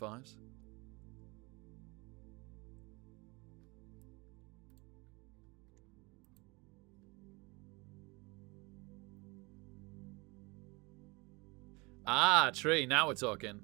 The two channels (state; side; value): quieter; left; 26.2 dB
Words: Ah, tree. Now we're talking.